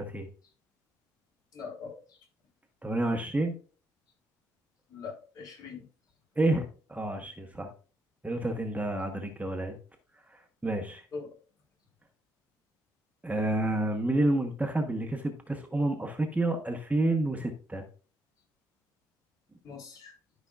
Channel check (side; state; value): both; normal; correlation 0.81